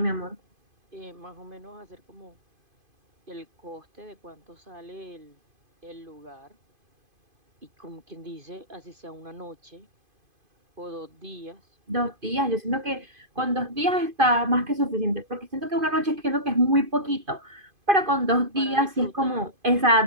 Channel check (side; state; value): left; late; 2.5 ms